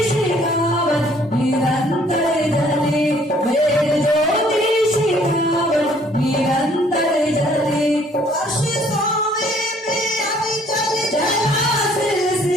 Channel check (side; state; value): both; normal; correlation 0.60